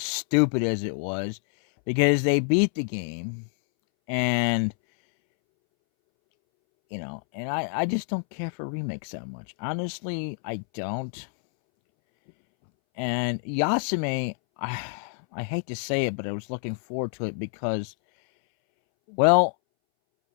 as it was, because they beat the game, and, and I just don't care for remakes that much. Honestly, I don't. And Yasume, I hate to say it, but I was looking forward to it because, well,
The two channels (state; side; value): silent; right; 60 dB below the other